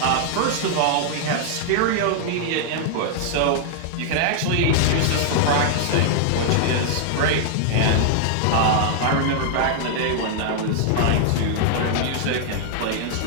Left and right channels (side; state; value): both; different; correlation -0.01